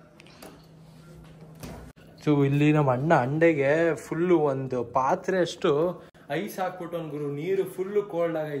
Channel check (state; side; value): identical; both; correlation 1.00